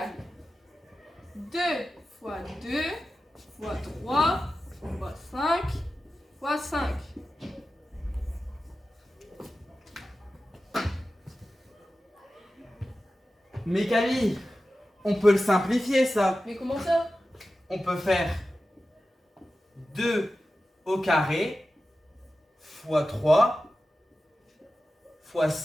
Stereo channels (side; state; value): both; normal; correlation 0.94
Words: 2 fois 2 fois 3 fois 5 fois 5. Mais Camille, on peut le simplifier ça. Mais comment ça? On peut faire 2 au carré fois 3 fois